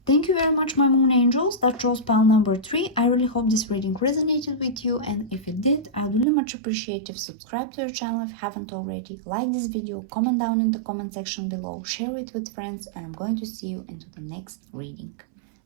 Thank you very much, my moon angels. That chose pile number 3. I really hope this reading resonated with you, and if it did, I would really much appreciate if you subscribe to our channel if you haven't already, like this video, comment down in the comment section below, share it with friends, and I'm going to see you into the next reading.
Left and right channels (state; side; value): drops out; left; at 6.2 s